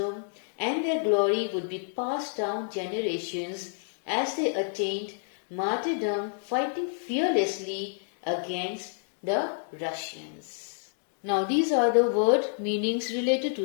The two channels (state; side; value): silent; right; digital silence